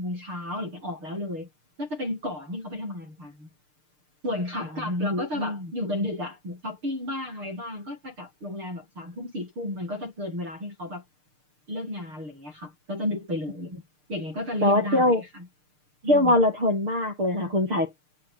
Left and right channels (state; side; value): late; left; 6.6 ms